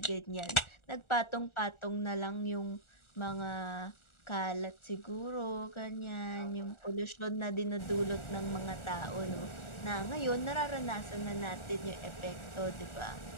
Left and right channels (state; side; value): late; right; 1.4 ms